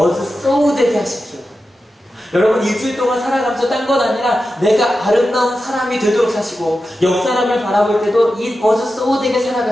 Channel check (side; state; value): both; normal; correlation 0.91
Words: so 되게 하십시오. 여러분 일주일 동안 살아가면서 딴 건 아니라 내가 아름다운 사람이 되도록 사시고, 옆 사람을 바라볼 때도 It was so 되게